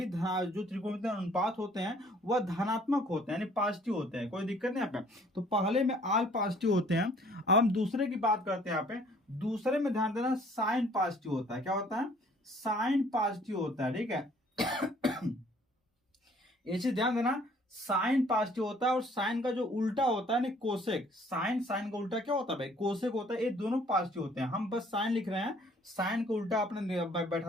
जो त्रिकोणमितीय अनुपात होते हैं वह धनात्मक होते हैं, यानी पॉजिटिव होते हैं, कोई दिक्कत नहीं यहाँ पे। तो पहले में आल पॉजिटिव होते हैं। अब हम दूसरे की बात करते हैं यहाँ पे। दूसरे में ध्यान देना, साइन पॉजिटिव होता है। क्या होता है? साइन पॉजिटिव होता है। ठीक है ये चीज ध्यान देना, साइन पॉजिटिव होता है और साइन का जो उल्टा होता है कोसेक, साइन, साइन का उल्टा क्या होता है भाई? कोसेक होता है। ये दोनों पॉजिटिव होते हैं। हम बस साइन लिख रहे हैं, साइन का उल्टा आपने बैठा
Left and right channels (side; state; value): both; normal; correlation 0.58